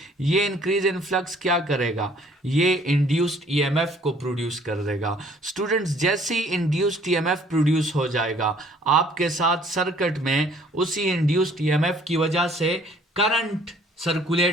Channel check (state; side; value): normal; both; correlation 0.58